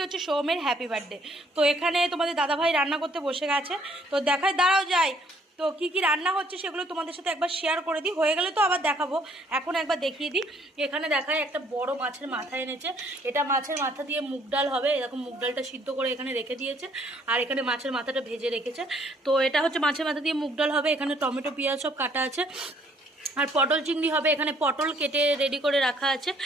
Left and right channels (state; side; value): normal; both; correlation 0.64